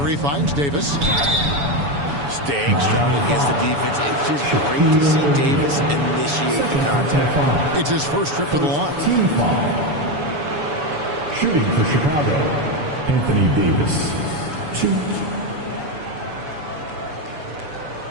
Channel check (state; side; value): late; left; 7.0 ms